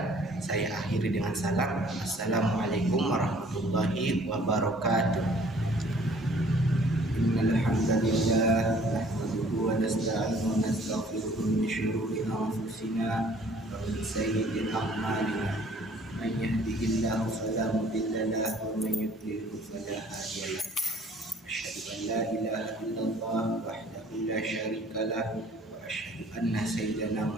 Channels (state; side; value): normal; both; correlation 0.56